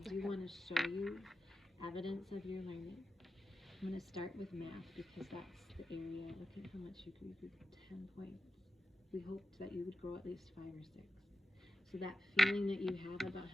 do want to show you evidence of your learning. I'm going to start with math because that's the area. Look at how much you could 10 points. We hoped that you would grow at least 5 or 6. So that feeling that you have about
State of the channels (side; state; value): both; normal; correlation 0.91